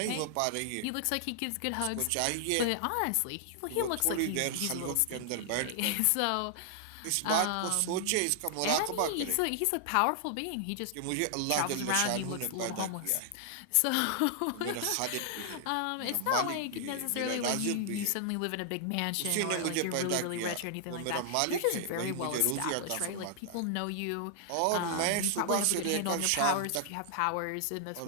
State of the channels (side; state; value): both; different; correlation 0.00